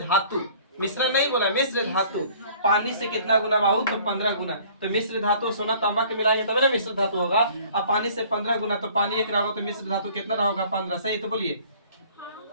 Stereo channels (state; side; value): inverted; both; correlation -0.53